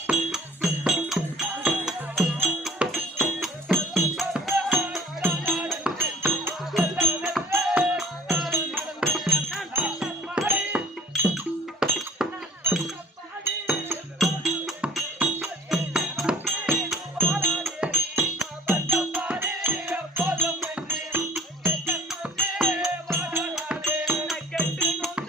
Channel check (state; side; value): normal; both; correlation 0.51